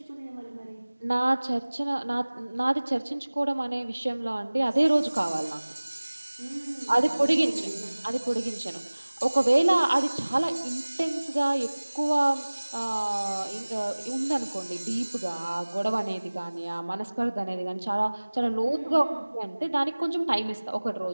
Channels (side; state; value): both; inverted; correlation -1.00